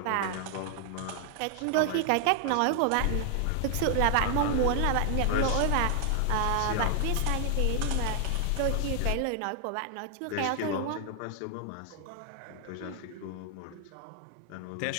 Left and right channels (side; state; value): both; different; correlation 0.00